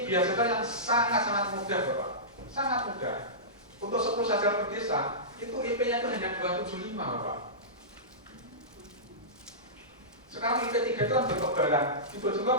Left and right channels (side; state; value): both; normal; correlation -0.18